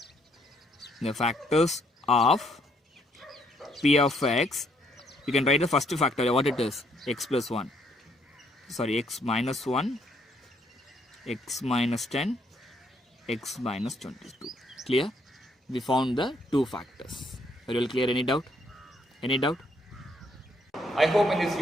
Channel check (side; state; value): both; normal; correlation 0.70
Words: the factors of p of x. You can write the first factor, what it is, x plus 1, sorry, x minus 1, x minus 10, x minus 22. Clear? We found the two factors. Are you all clear? Any doubt? Any doubt? I hope in this